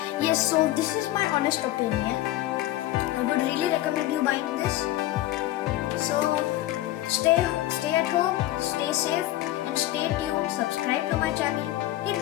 yes, so this is my honest opinion. I would really recommend you buying this. So stay at home, stay safe, and stay tuned. Subscribe to my channel, hit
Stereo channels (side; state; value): right; quieter; 15.3 dB